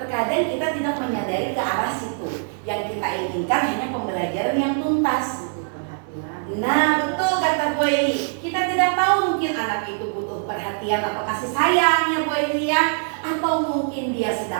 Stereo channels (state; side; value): silent; left; 58 dB below the other